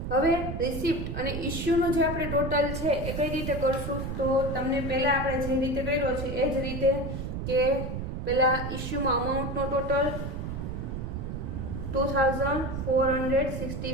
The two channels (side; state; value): right; noise; rumble, 5 dB below the sound